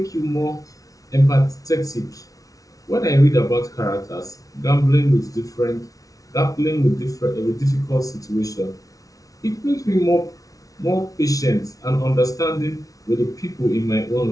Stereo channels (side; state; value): right; late; 0.17 ms